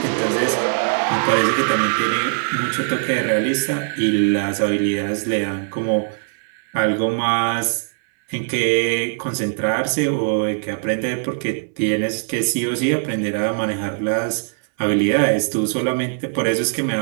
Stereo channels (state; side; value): silent; left; 63 dB below the other